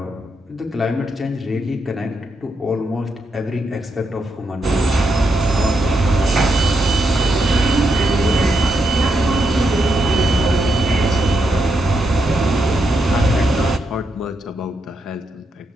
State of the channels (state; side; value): normal; both; correlation 0.82